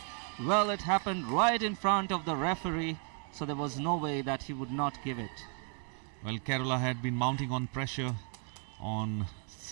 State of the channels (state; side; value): quieter; left; 39.0 dB